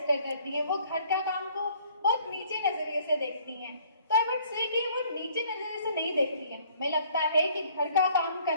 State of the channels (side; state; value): both; inverted; correlation -0.59